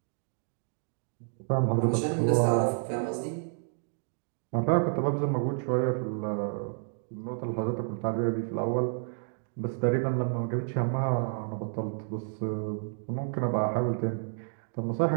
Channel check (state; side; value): silent; left; digital silence